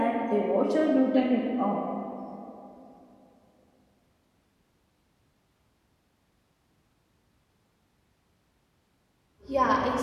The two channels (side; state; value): both; identical; correlation 1.00